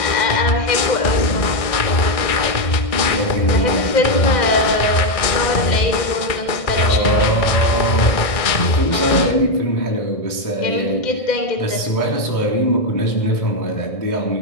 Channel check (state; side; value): late; right; 1.6 ms